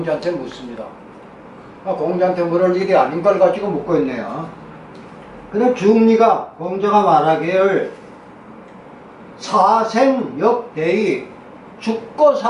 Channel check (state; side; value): identical; both; correlation 1.00